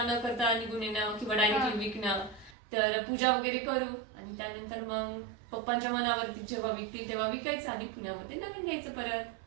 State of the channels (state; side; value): drops out; left; at 2.6 s